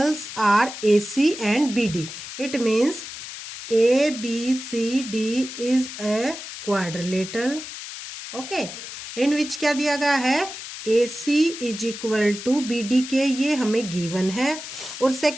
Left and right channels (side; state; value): left; noise; hiss, 10 dB below the sound